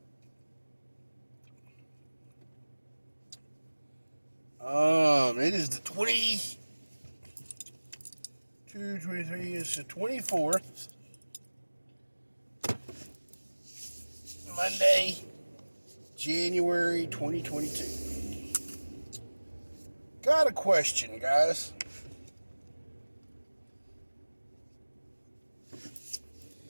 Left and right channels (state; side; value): inverted; both; correlation -1.00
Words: It is the 23, it's the 24th. Monday, January 2022. Got a question, guys.